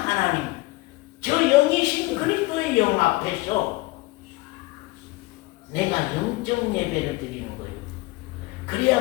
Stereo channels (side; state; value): right; quieter; 22.1 dB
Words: 저 영이신 그리스도의 영 앞에서 내가 영적 예배를 드리는 거예요.